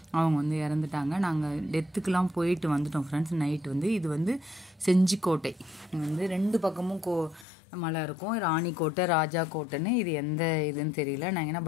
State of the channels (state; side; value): drops out; right; at 7.5 s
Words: அவங்க வந்து இறந்துட்டாங்க. நாங்கள் டெத்துக்கெலாம் போயிட்டு வந்துட்டோம் ஃப்ரெண்ட்ஸ். நைட்டு வந்து இது வந்து செஞ்சிக்கோட்டை வந்து ரெண்டு பக்கமும் மலை இருக்கும். ராணிக்கோட்டை, ராஜா கோட்டைன்னு. இது எந்த இதுன்னு தெரியல. நாங்கள் ஏன்னா